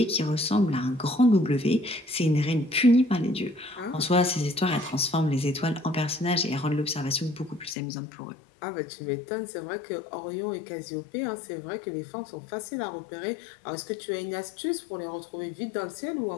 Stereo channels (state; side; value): drops out; right; at 7.8 s